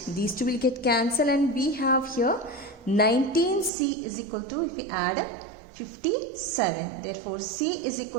these two will get cancelled, and we have here 19c is equal to, if you add up, 57. Therefore c is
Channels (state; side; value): drops out; left; at 3.7 s